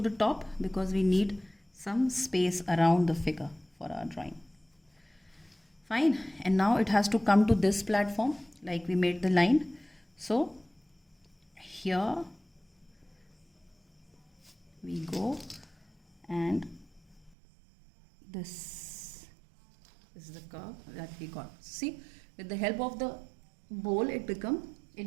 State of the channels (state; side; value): drops out; left; at 17.4 s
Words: the top because we need some space around the figure for our drawing. Fine, and now it has to come to this platform like we made the line. So here we go, and this is the curve that we got. See, with the help of the bowl it